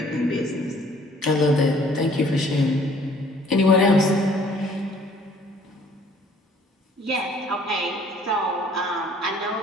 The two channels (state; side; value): normal; both; correlation 0.57